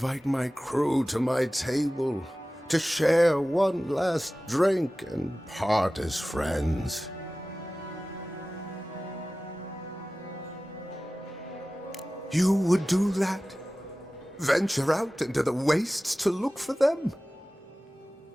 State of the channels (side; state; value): both; normal; correlation 0.96